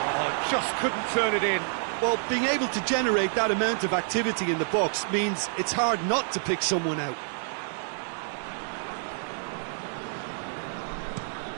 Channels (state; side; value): silent; left; 59 dB below the other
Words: Oh, just couldn't turn it in. Well, being able to generate that amount of activity in the box means it's hard not to pick someone out.